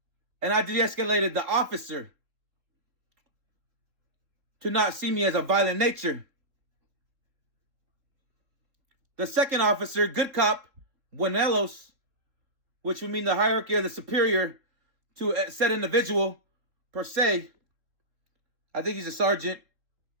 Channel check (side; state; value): left; late; 3.6 ms